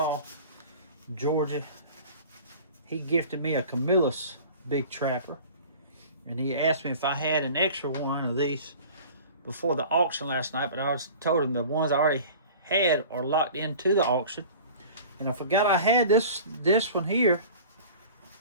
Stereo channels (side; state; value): both; inverted; correlation -0.41